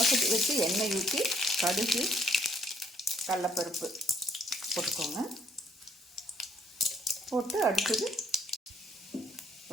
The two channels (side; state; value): both; normal; correlation 0.66